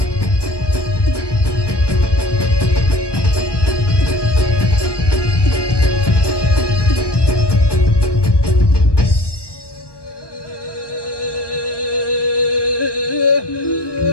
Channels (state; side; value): late; right; 1.2 ms